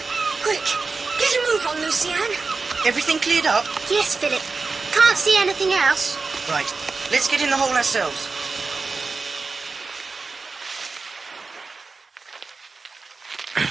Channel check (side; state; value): left; quieter; 4.2 dB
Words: Quick, get a move on, Lucienne. Everything cleared up? Yes, Philip. Can't see anything else. Right, let's get in the hole ourselves.